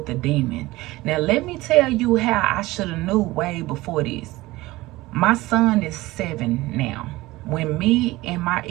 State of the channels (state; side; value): quieter; left; 19.2 dB